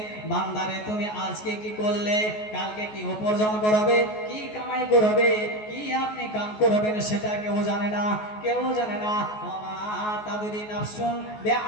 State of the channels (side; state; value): right; late; 14 ms